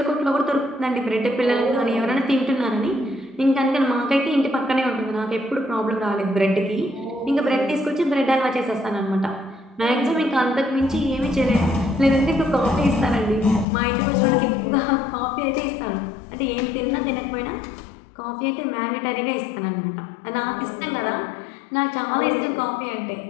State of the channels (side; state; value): right; drops out; at 13.7 s